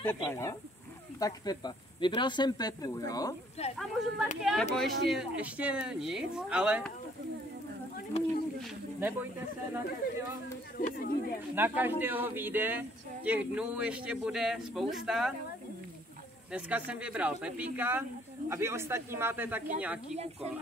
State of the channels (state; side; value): normal; both; correlation 0.62